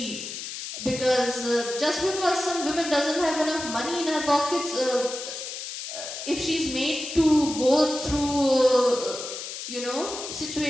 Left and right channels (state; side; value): noise; left; hiss, 8 dB below the sound